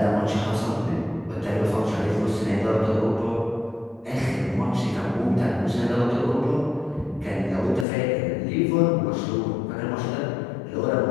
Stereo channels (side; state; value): right; drops out; at 7.9 s